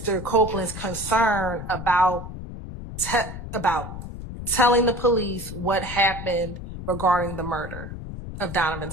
Copeland's concern about telling the police what happened regarding the murder of Donovan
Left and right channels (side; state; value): left; noise; rumble, 9 dB below the sound